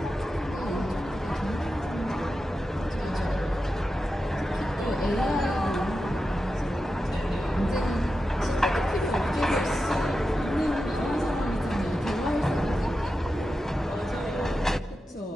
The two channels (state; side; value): normal; both; correlation 0.91